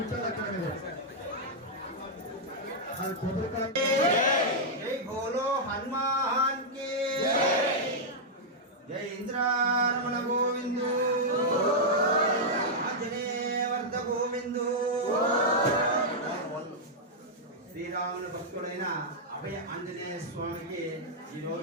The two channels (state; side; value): normal; both; correlation -0.06